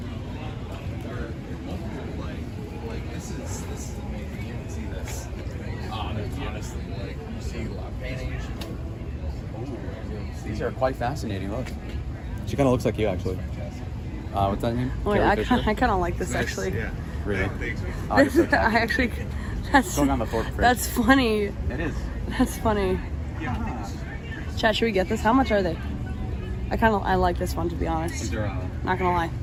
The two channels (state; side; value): identical; both; correlation 1.00